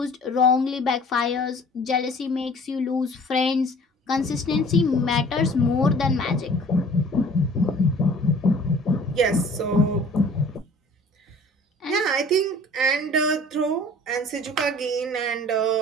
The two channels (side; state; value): both; normal; correlation 0.49